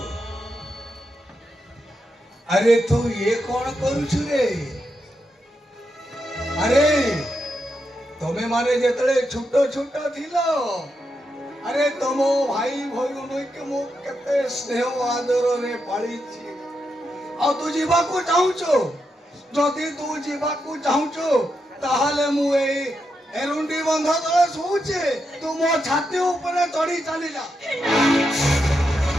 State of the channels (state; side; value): normal; both; correlation 0.84